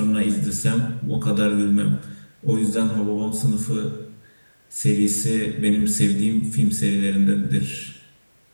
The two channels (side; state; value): both; inverted; correlation -1.00